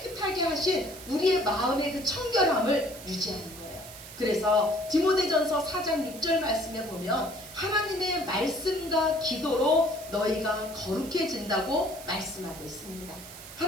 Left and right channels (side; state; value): right; noise; hiss, 15 dB below the sound